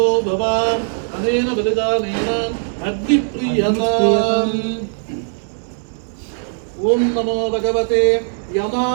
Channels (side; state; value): left; silent; digital silence